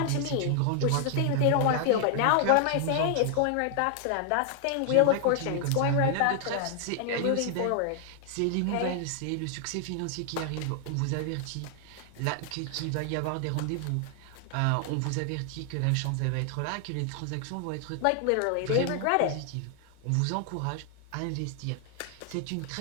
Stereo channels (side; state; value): both; different; correlation 0.00